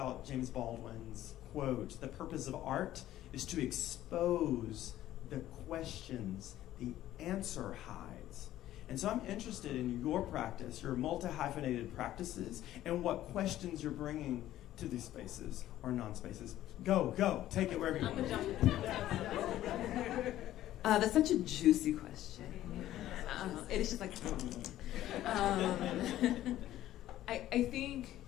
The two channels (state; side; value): quieter; right; 13.6 dB